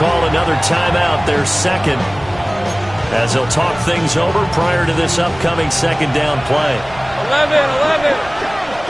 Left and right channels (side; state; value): right; noise; rumble, 19 dB below the sound